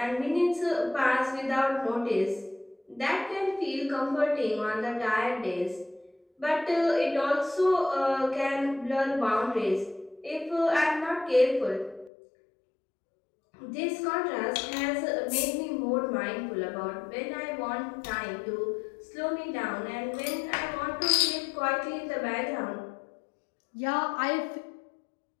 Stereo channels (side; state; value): right; drops out; at 12.1 s